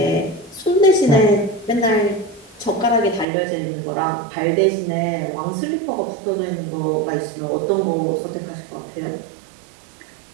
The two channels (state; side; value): drops out; left; at 3.2 s